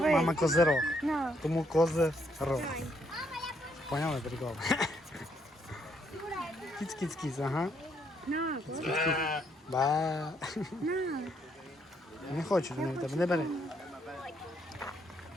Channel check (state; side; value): normal; both; correlation 0.73